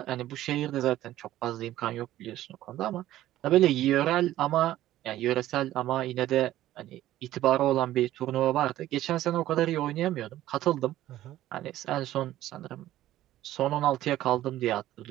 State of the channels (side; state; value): left; quieter; 14.1 dB